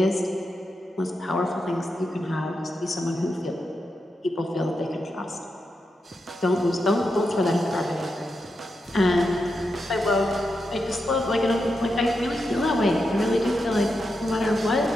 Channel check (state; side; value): normal; both; correlation 0.86